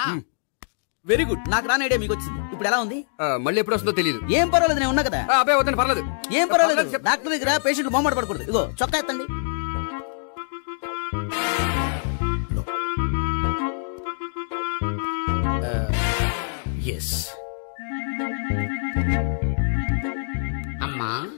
Very good. నాకు రాని ఐడియా మీకు వచ్చింది. ఇప్పుడు ఎలా ఉంది? మళ్ళీ ఎప్పుడు వస్తుందో తెలియదు. ఏం పర్వాలేదు, నేను ఉన్నా కదా. అబ్బాయి వద్దండి, పర్లేదు. ఏం పర్వాలేదు. డాక్టర్ దగ్గర పేషెంట్ మొహమాట పడకూడదు. ఇగో చొక్కా ఎత్తండి. ఎస్. అమ్మా,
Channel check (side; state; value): right; silent; digital silence